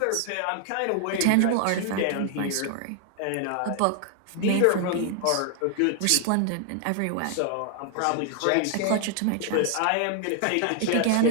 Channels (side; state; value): both; different; correlation 0.00